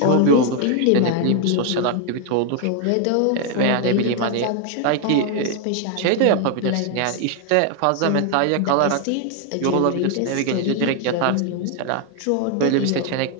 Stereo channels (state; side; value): different; both; correlation 0.01